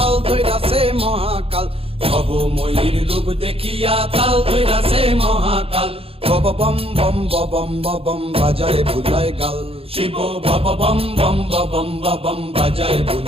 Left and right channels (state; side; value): late; left; 0.27 ms